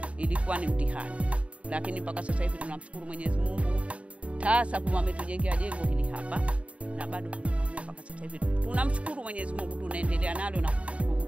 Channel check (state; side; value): late; left; 0.064 ms